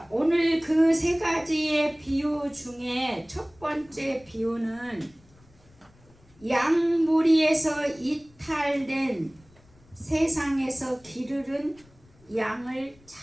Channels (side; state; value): left; noise; rumble, 29 dB below the sound